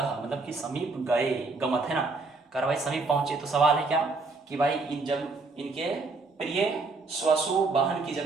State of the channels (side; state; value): left; quieter; 3.7 dB